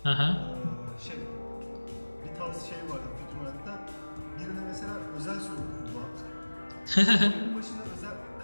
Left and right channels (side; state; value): both; inverted; correlation -1.00